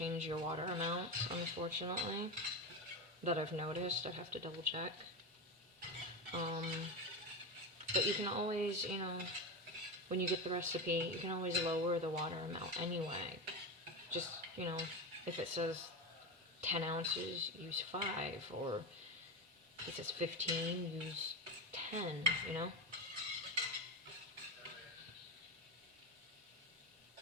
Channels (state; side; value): normal; both; correlation 0.17